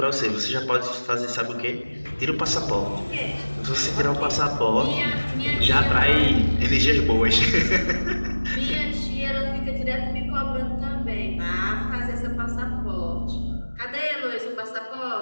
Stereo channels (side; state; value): both; inverted; correlation -1.00